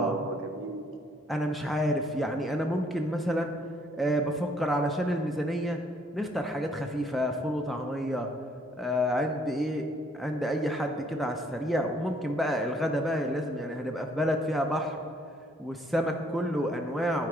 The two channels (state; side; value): normal; both; correlation 0.65